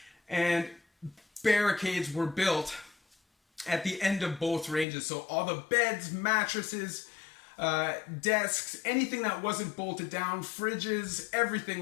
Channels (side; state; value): right; drops out; at 4.9 s